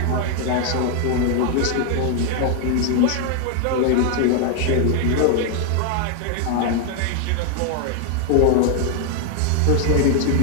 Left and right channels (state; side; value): different; both; correlation 0.00